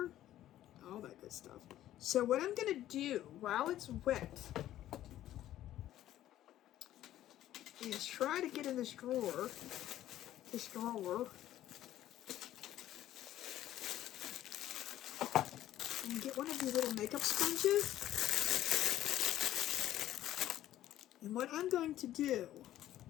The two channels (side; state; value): right; quieter; 13.1 dB